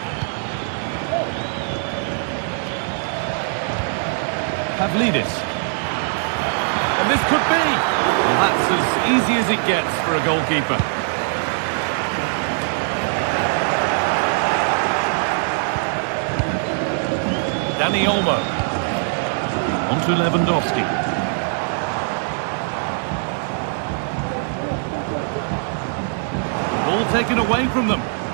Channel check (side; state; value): left; silent; 65 dB below the other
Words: Pavlidis. And this could be. Well, that's as easy as it gets for a goalkeeper. Dani Olmo. On to Lewandowski. Ball taken away from them.